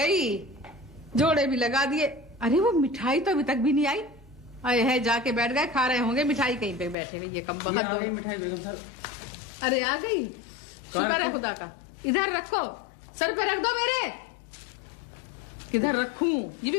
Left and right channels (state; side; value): drops out; right; at 7.0 s